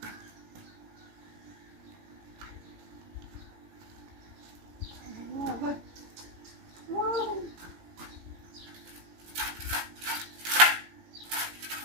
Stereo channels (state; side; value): late; left; 17 ms